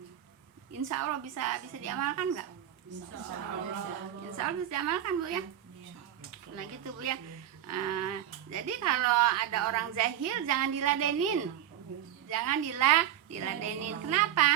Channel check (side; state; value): left; quieter; 11.3 dB